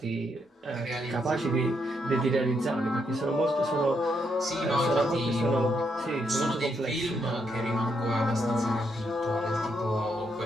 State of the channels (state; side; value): normal; both; correlation 0.78